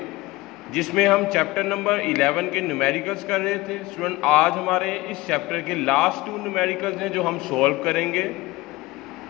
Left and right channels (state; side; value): quieter; right; 20.2 dB